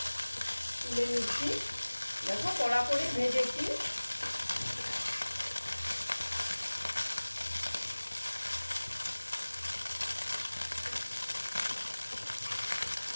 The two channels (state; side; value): inverted; both; correlation -1.00